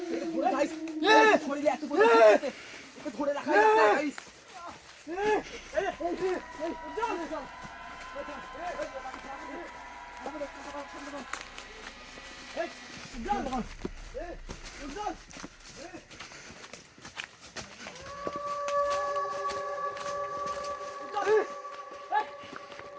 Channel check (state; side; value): identical; both; correlation 1.00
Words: ধরে রাখা যাচ্ছে গাইস।